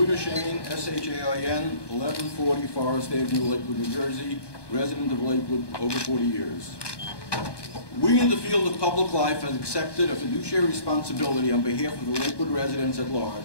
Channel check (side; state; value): right; late; 1.2 ms